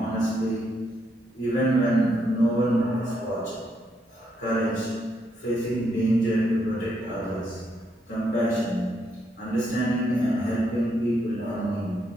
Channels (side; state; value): both; normal; correlation 0.77